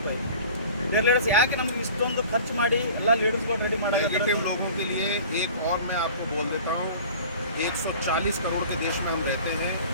ಲೀಡರ್ಸ್ ಯಾಕೆ ನಮ್ಗೆ ಇಷ್ಟೊಂದು ಖರ್ಚು ಮಾಡಿ ಎಲ್ಲ ಲೀಡರ್ಸ್ಗಳು ರೆಡಿ ಮಾಡೋದು? नेगेटिव लोगों के लिए एक और मैं आपको बोल देता हूँ, 140 करोड़ के देश में हम रहते हैं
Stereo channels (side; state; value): both; inverted; correlation -0.43